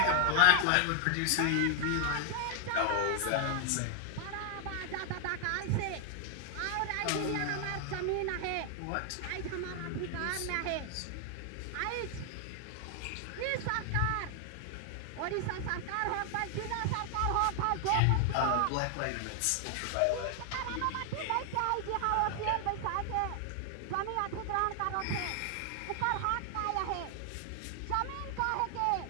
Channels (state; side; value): different; both; correlation 0.00